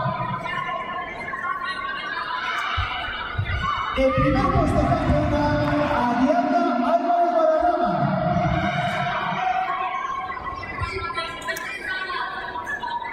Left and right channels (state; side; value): identical; both; correlation 1.00